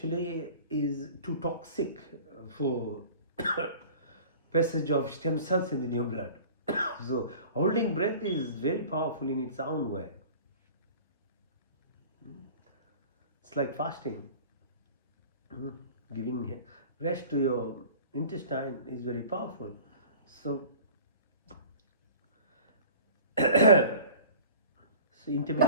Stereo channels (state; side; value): inverted; both; correlation -0.44